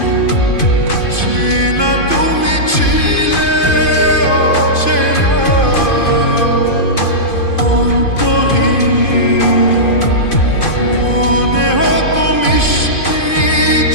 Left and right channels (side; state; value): right; late; 2.5 ms